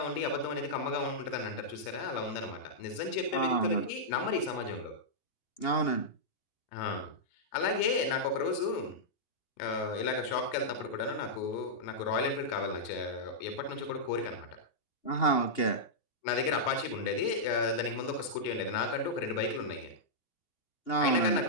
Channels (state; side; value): late; right; 2.8 ms